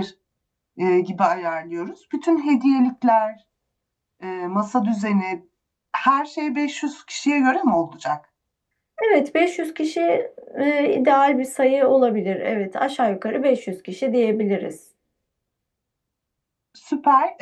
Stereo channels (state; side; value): identical; both; correlation 1.00